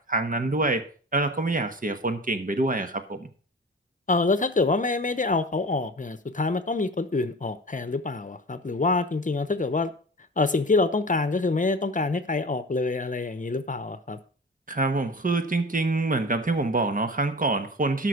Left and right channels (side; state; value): both; normal; correlation 0.35